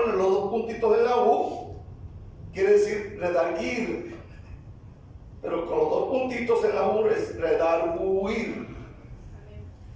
los 2 puntitos en la U, quiere decir redarguir. Pero con los 2 puntitos en la U es redarguir.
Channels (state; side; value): identical; both; correlation 1.00